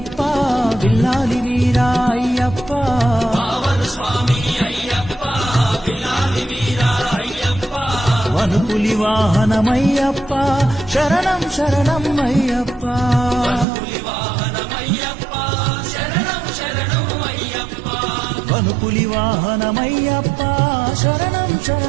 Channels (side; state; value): left; drops out; at 13.7 s